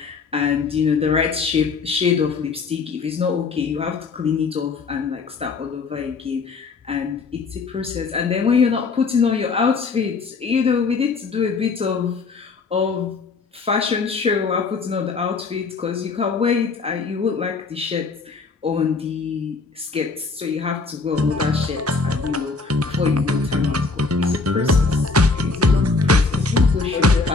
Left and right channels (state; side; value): quieter; right; 4.4 dB